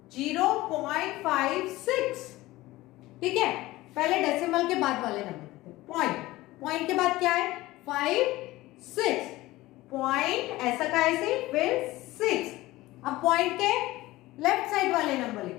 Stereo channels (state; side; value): quieter; right; 18.3 dB